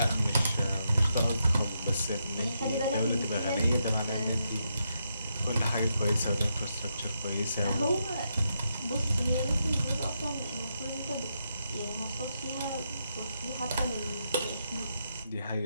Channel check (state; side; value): inverted; both; correlation -0.82